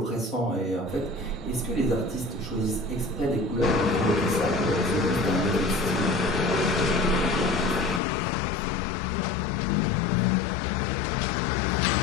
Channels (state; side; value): drops out; right; at 8.0 s